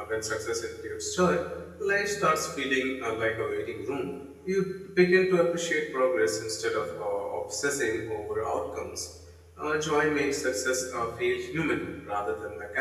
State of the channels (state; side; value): identical; both; correlation 1.00